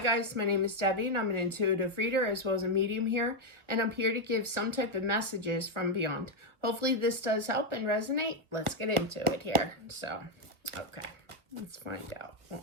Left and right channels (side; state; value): left; late; 1.2 ms